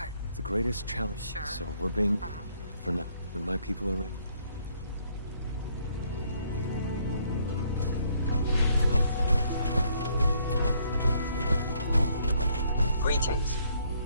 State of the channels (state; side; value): inverted; both; correlation -0.67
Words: The greatest challenge, Sure. so we're being... for now, when my people are ready. Greetings.